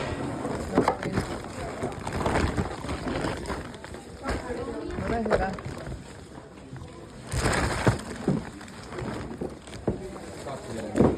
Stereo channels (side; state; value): both; identical; correlation 1.00